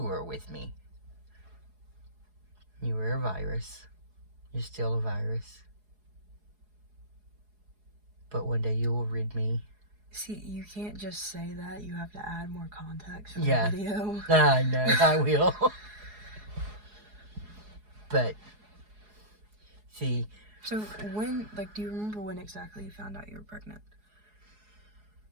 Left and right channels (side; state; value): left; late; 4.8 ms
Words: were with me. You were a virus. You're still a virus. But one day you will rid me. See, you can't just say that. You have to add more context for the video. I know, I will. But, see. So do you remember when exactly you found out you were pregnant?